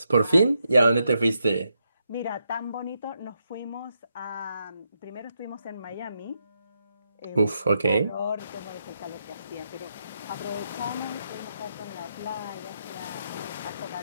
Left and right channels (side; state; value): both; inverted; correlation -0.82